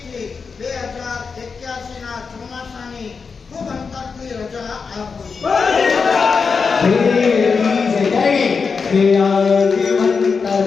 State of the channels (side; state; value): right; quieter; 5.2 dB